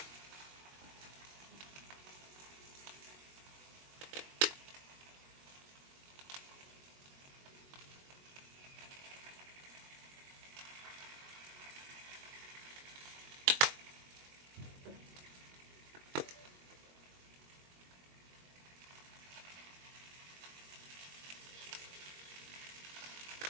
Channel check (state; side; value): late; left; 22 ms